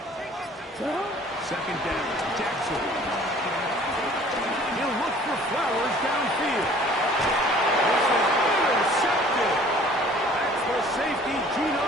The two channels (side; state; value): both; normal; correlation 0.52